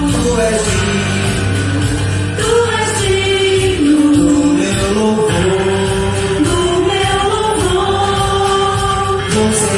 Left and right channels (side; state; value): both; identical; correlation 1.00